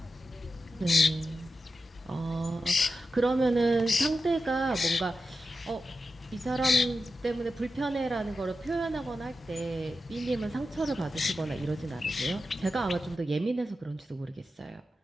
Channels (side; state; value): both; normal; correlation 0.90